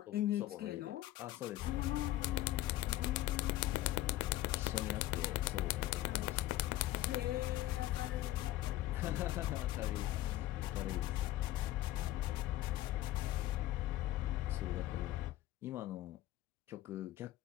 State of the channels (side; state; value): right; quieter; 15.3 dB